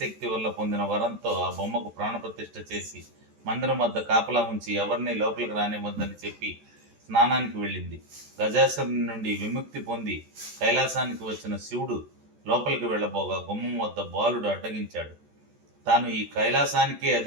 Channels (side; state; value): left; late; 14 ms